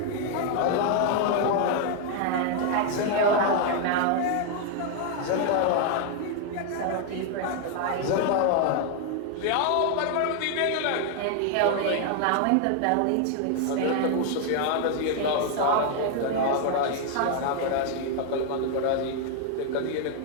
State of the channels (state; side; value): different; both; correlation 0.00